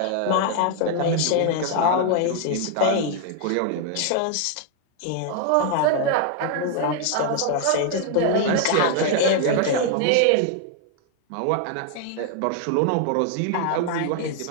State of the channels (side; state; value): both; different; correlation 0.00